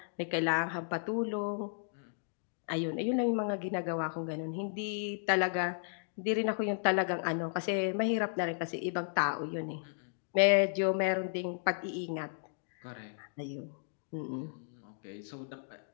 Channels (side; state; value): right; silent; digital silence